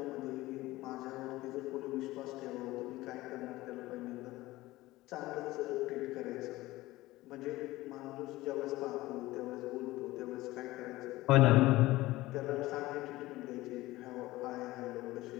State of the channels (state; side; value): quieter; right; 18.3 dB